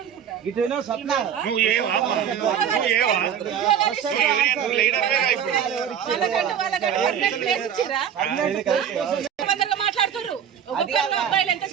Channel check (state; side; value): quieter; left; 8.7 dB